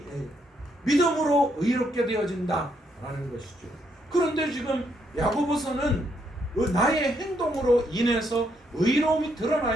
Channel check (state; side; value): normal; both; correlation 0.75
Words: 믿음으로 의롭게 되어진다라는 것이죠. 그런데 지금 야고보서는 나의 행동으로 인해서 의로움이